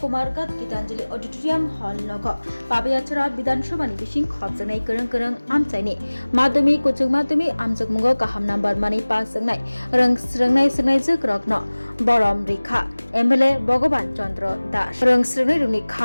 गीतांजलि ऑडिटोरियम हॉल नगो पाबयाचरा विधानसभा नि बिसिं खबजनाय करं करं आमचायनि माध्यमिक कुचुक माध्यमिक आमजक मुंगो गाहाम नम्बर मानि पास जोंनाय रोंस्रोंनाय सोंनाय जोक रगनो बरम रेखा एमएलए भगवान चंद्र दास रोंस्रोंनाय रुनि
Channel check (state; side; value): inverted; both; correlation -1.00